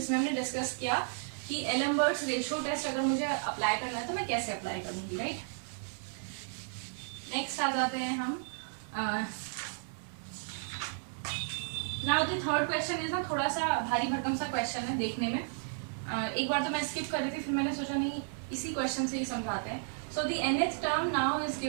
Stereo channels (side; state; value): left; silent; digital silence